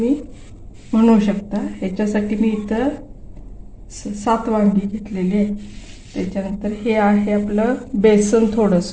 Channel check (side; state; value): both; identical; correlation 1.00